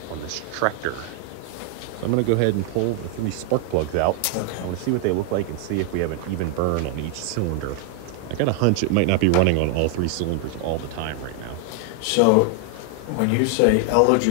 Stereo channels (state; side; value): different; both; correlation 0.00